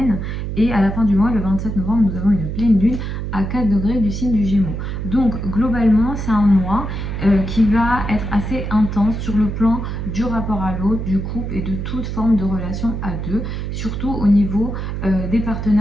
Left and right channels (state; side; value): noise; right; hum, 4 dB below the sound